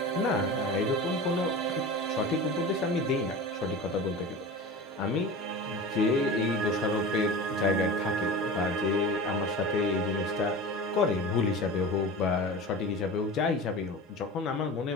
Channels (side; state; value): both; normal; correlation 0.33